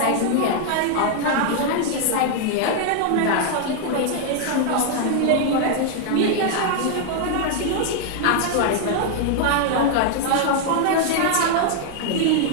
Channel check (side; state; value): both; different; correlation 0.00